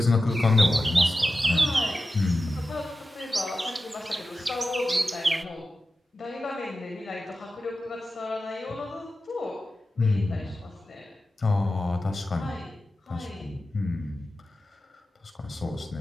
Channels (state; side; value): normal; both; correlation 0.93